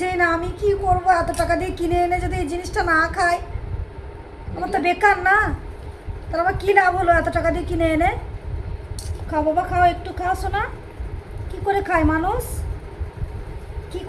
না, আমি কি করবো? এত টাকা দিয়ে কিনে এনে যদি এই জিনিসটা না খাই, আমার তো বেকার না? তাহলে আমার কী লাভ হলো এত টাকা দিয়ে কিনে এনে? খাও বাবা খাও, একটু খাও শোনা। কি করে খায় মানুষ? কি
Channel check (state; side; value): identical; both; correlation 1.00